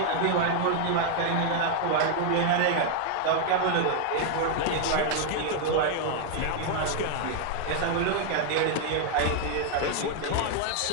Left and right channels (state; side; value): different; both; correlation 0.00